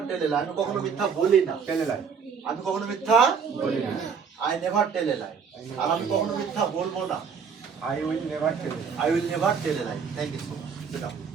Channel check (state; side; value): quieter; left; 6.2 dB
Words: tell a lie আমি কখনো মিথ্যা বলি না Tell a lie. আমি কখনো মিথ্যা বলি না। I never tell a lie আর আমি কখনো মিথ্যা বলবো না I will never tell a lie. I will never tell a lie thank you so much sit down